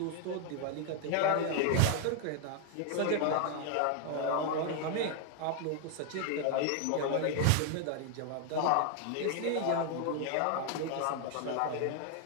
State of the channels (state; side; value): different; both; correlation 0.00